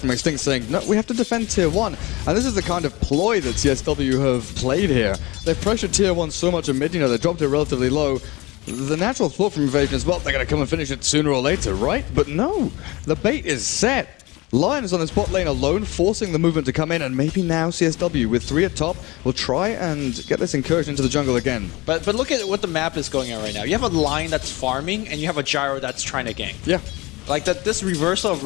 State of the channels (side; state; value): right; quieter; 22.4 dB